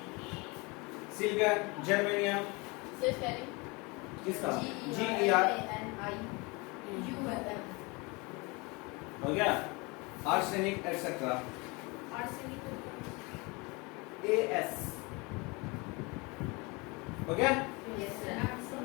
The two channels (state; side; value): quieter; right; 27.1 dB